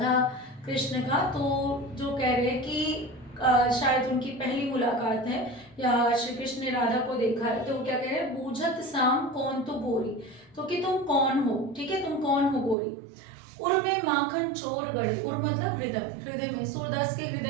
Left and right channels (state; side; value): drops out; left; at 12.8 s